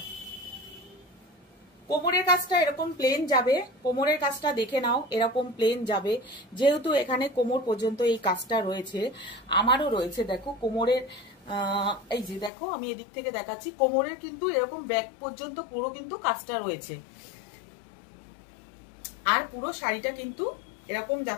কোমরের কাজটা এরকম প্লেন যাবে, কোমরের কাজটা দেখে নাও এরকম প্লেন যাবে, যেহেতু এখানে কোমর পর্যন্ত এই কাজটা রয়েছে, আমারও রয়েছে। দেখো কোমরের এই যে দেখো আমি এদিক থেকে দেখাচ্ছি, কোমরের কিন্তু এরকম ব্যাক পর্যন্ত পুরো কিন্তু কাজটা রয়েছে। আর পুরো শাড়িটা কিন্তু এরকম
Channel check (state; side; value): drops out; right; at 12.5 s